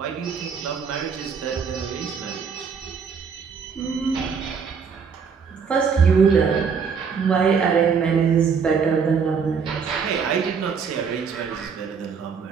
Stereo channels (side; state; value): left; quieter; 6.1 dB